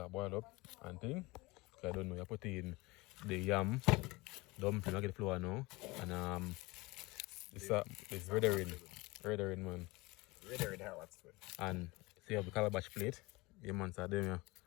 boil up and thing. Cause I don't know, you put in the yam, dumpling, I get the flour now. And it's redder in man. Redder in hell, that's good. And see you have the calabash plate. Yeah man, so them yeah.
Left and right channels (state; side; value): quieter; right; 23.0 dB